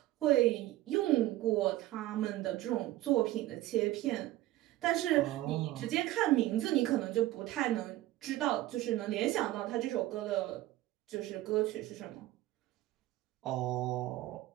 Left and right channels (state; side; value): quieter; left; 16.0 dB